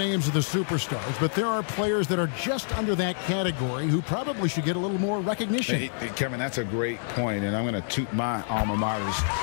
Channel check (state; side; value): silent; right; digital silence